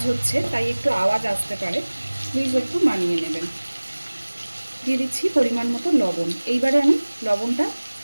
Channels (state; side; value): inverted; both; correlation -1.00